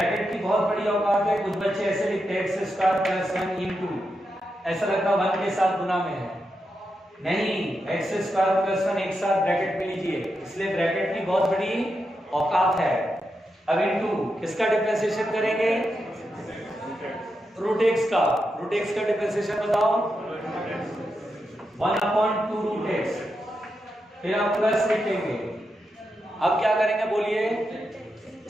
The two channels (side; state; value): both; normal; correlation 0.86